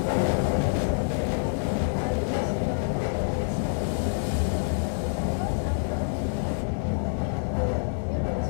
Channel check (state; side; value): silent; right; 60 dB below the other